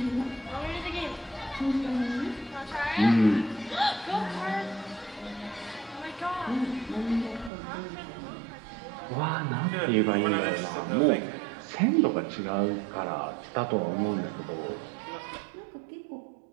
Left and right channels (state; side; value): drops out; left; at 7.5 s